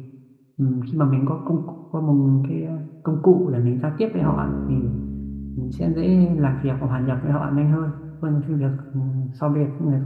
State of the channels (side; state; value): both; identical; correlation 1.00